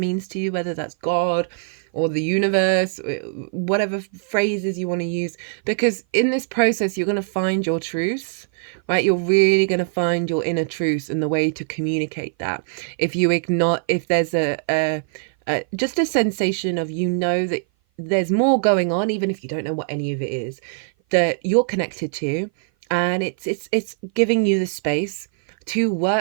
to you, whether that's God or the universe, whatever phrases you want to use. Because in this process, you're going to find your truth, right? You're really going to find your inner truth and the way to communicate that. If there's just a sensation of, that there's more going on, even if you don't know what any of it is, that you're connected to, and it's giving you the space to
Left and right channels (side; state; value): left; silent; 57 dB below the other